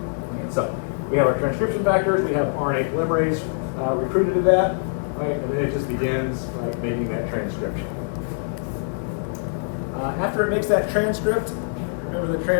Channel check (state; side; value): silent; right; digital silence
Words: Right? So we have our transcription factors. We have RNA polymerase recruited to that, right? And then it just begins, right, making that transcription. After it makes that transcript, remember the